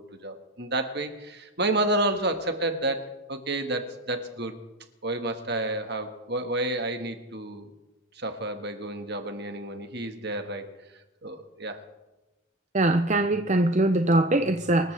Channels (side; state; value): both; normal; correlation 0.26